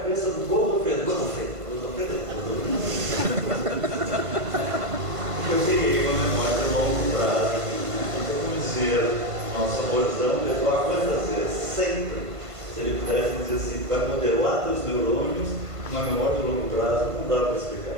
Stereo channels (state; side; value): late; left; 1.5 ms